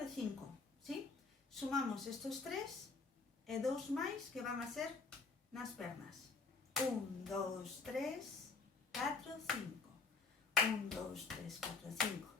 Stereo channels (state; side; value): quieter; right; 4.3 dB